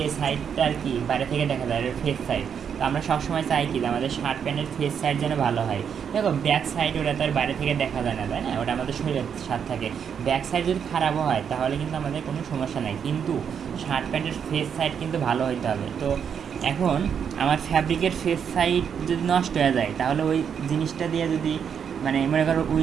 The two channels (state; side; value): quieter; left; 7.6 dB